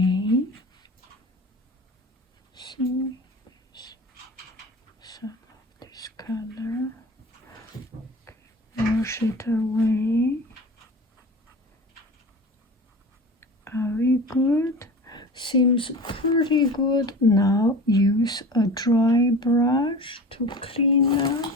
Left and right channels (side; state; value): both; normal; correlation 0.35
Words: See, some of this color. Okay. Wash it away. Are we good? Seems pretty good. Now use a dry brush to clean